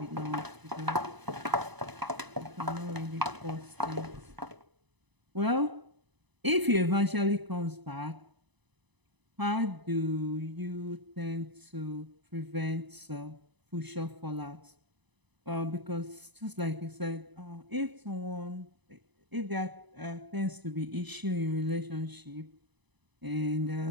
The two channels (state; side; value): late; left; 1.0 ms